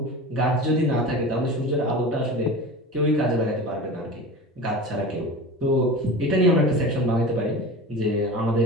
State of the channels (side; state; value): both; normal; correlation 0.32